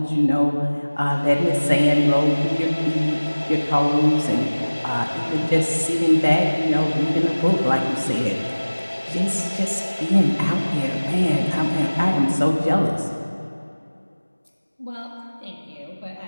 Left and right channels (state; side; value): inverted; both; correlation -1.00